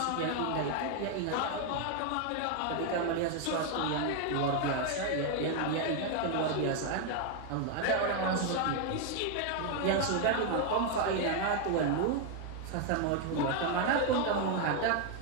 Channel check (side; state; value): both; different; correlation 0.01